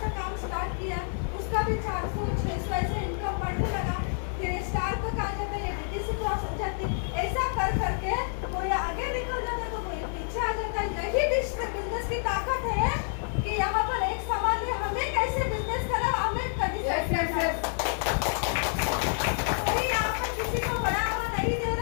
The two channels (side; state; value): right; silent; 59 dB below the other